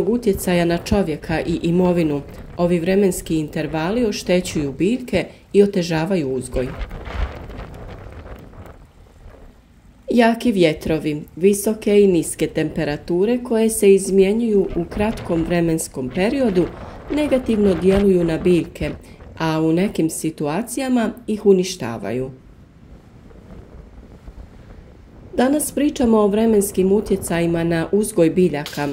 utjecaja na čovjeka i imovinu, ovi vremenski intervali oštećuju biljke i otežavaju uzgoj. Jaki vjetrovi, visoke i niske temperature koje se izmjenjuju u kratkom vremenskom periodu negativno djeluju na biljke, a u nekim situacijama ih uništavaju. Danas pričamo o vremenskim utjecajima na uzgoj biljaka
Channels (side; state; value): both; identical; correlation 1.00